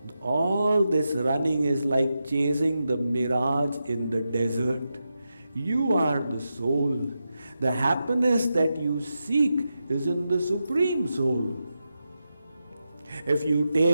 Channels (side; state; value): both; inverted; correlation -0.89